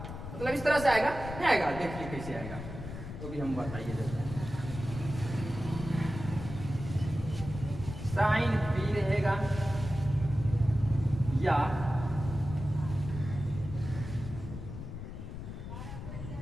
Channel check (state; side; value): noise; left; rumble, 9 dB below the sound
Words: मतलब इस तरह से आएगा, नहीं आएगा, देखिए कैसे आएगा तो भी हम बताइए देते हैं। साइन P रहेगा या